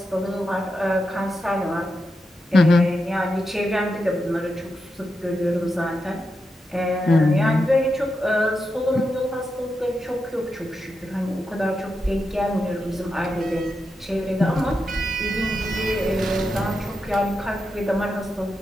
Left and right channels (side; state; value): both; normal; correlation 0.87